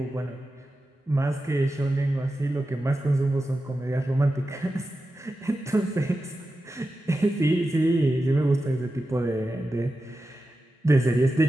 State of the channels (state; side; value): normal; both; correlation 0.92